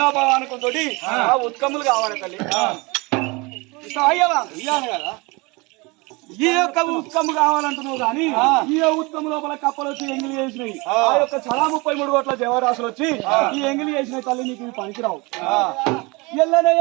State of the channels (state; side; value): quieter; left; 26.2 dB